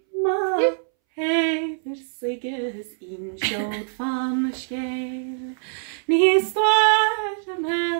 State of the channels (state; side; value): silent; left; 63 dB below the other